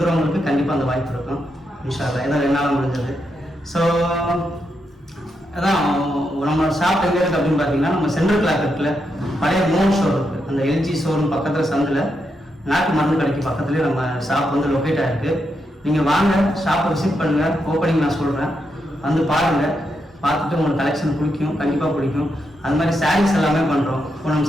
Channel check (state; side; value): normal; both; correlation 0.83